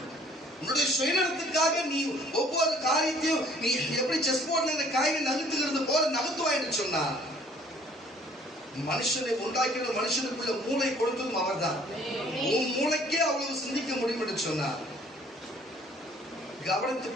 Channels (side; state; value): both; normal; correlation 0.58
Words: உன்னுடைய சுயநலத்துக்காக நீ ஒவ்வொரு காரியத்தையும் நீ எப்படி செஸ் போர்ட்ல காயை நகர்த்துகிறது போல நகர்த்துவாய் என்று சொன்னார். மனுஷனை உண்டாக்கின மனுஷனுக்குள்ள மூளை கொடுத்ததும் அவர் தான். உன் மூளைக்கே அவ்வளவு சிந்திக்க முடியும் என்று சொன்னார்.